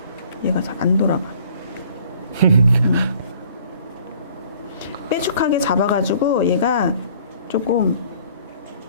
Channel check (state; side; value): inverted; both; correlation -0.55